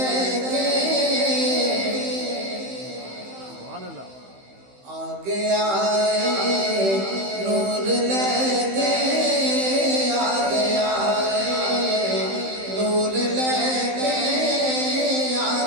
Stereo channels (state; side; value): late; left; 15 ms